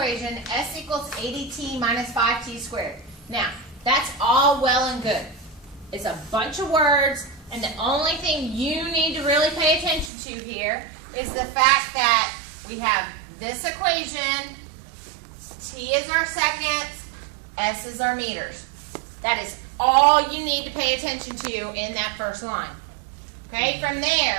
S equals 80t minus 5t squared. Now, that's all well and good. It's a bunch of words, and the only thing you need to really pay attention to here is the fact that we have this equation, T is our seconds, S is our meters. That is all you need to pay attention to in that first line. Okay, from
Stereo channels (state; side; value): drops out; left; at 10.1 s